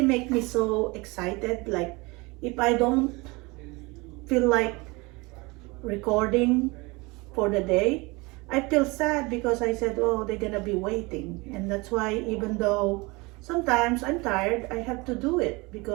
make me so excited. Like, if I don't feel like recording for the day, I feel sad because I said, oh, they're gonna be waiting. And that's why, even though sometimes I'm tired, I have to do it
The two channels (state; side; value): quieter; left; 25.1 dB